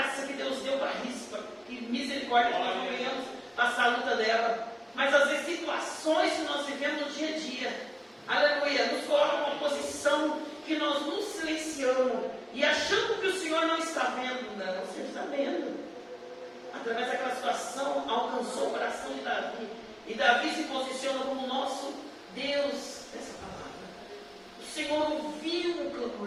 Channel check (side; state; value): both; identical; correlation 1.00